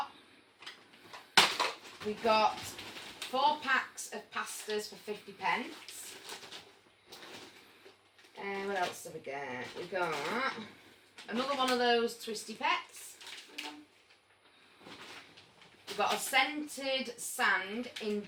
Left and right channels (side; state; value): both; identical; correlation 1.00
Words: We got 4 packs of pastas for 50p. And what else did we get? We got another one of those twisty pets. We got a scented sand in